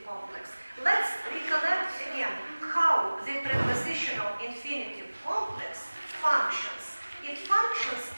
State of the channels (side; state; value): both; inverted; correlation -1.00